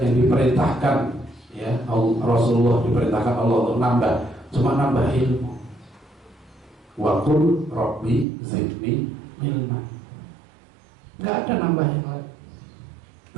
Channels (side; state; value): left; drops out; at 8.2 s